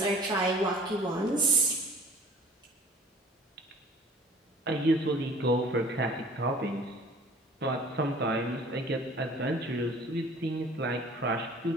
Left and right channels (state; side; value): normal; both; correlation 0.48